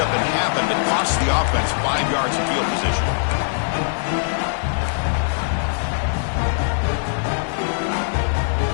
happen, but cost the offense 5 yards of field position.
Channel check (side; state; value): right; silent; 63 dB below the other